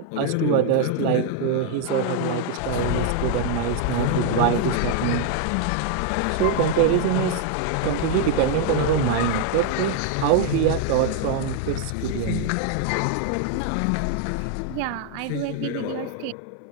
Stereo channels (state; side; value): different; both; correlation 0.00